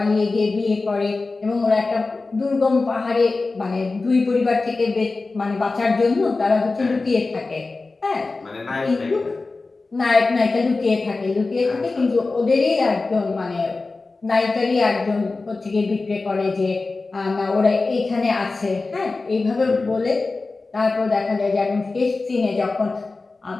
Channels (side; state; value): right; quieter; 3.7 dB